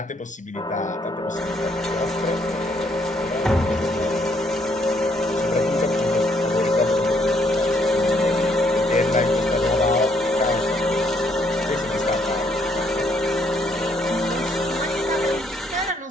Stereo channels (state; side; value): normal; both; correlation 0.70